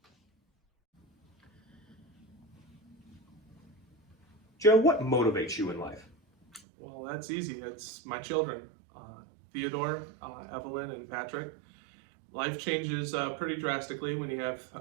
Joe, what motivates you in life? Well, that's easy. It's my children, Theodore, Evelyn, and Patrick. Life changes pretty drastically when you have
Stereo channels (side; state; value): left; drops out; at 6.6 s